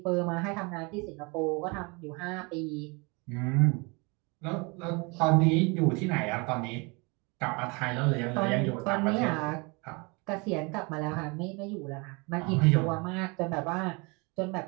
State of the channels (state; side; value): quieter; left; 29.1 dB